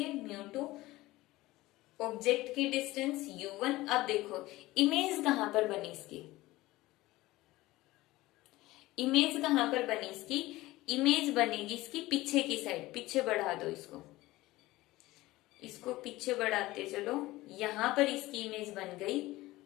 μ2। ऑब्जेक्ट की डिस्टेंस u1। अब देखो इमेज कहां पर बनी इसकी, इमेज कहां पर बनी इसकी, इमेज बनेगी इसकी पीछे की साइड। पीछे बढ़ा दो इसको, इसको पीछे बढ़ाते चलो, यहां पर इसकी इमेज बन गई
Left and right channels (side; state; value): right; quieter; 18.4 dB